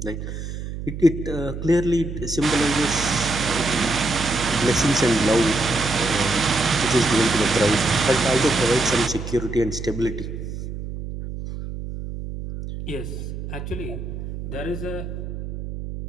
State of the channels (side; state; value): right; noise; hum, 7 dB below the sound